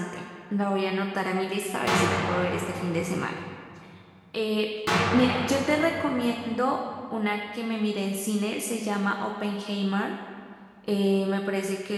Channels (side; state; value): both; identical; correlation 1.00